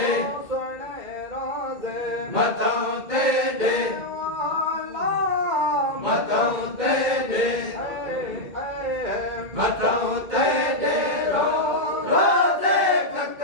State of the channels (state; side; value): late; left; 2.1 ms